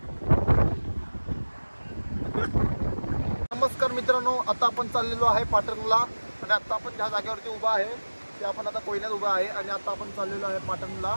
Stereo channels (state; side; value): inverted; both; correlation -1.00